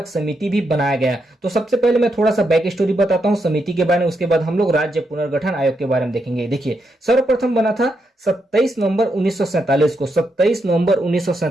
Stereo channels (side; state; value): both; normal; correlation 0.81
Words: समिति भी बनाया गया। तो सबसे पहले मैं थोड़ा सा बैक स्टोरी बताता हूं समिति के बारे में, उसके बाद हम लोग राज्य पुनर्गठन आयोग के बारे में देखेंगे। देखिए, सर्वप्रथम बना था 27 नवंबर 1947 को। 27 नवंबर